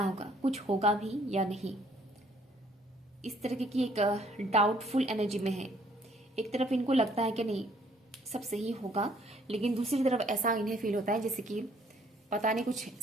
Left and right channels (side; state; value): both; normal; correlation 0.63